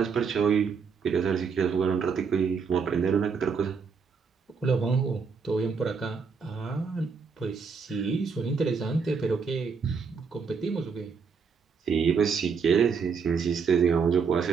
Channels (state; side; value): quieter; left; 5.6 dB